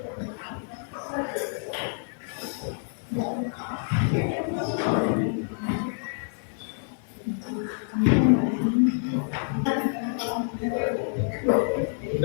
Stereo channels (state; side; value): silent; right; digital silence